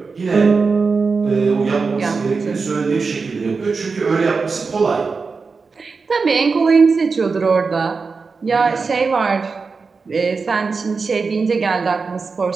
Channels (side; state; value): left; quieter; 4.6 dB